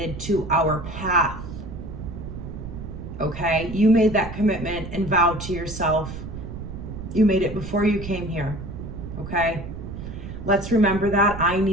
to our path. Okay? You made that commitment and vow to yourself. You made it before you came here. Okay? Let's remember that. I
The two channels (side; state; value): right; noise; rumble, 9 dB below the sound